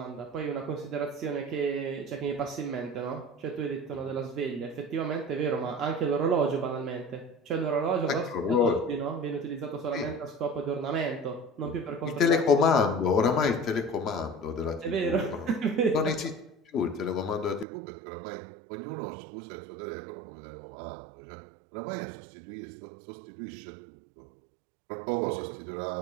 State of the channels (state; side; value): drops out; left; at 17.7 s